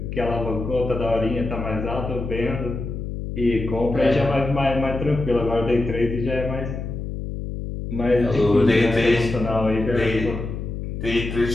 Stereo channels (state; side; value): noise; left; hum, 6 dB below the sound